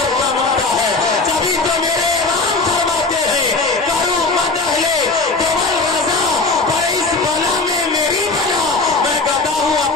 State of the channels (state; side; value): quieter; right; 3.6 dB